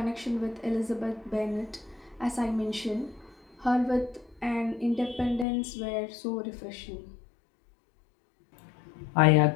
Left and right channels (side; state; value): right; drops out; at 5.5 s